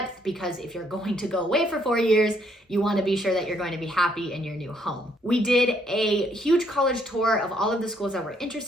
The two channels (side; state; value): both; normal; correlation 0.70